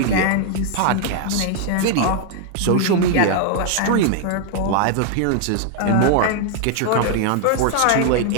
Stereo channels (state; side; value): different; both; correlation 0.00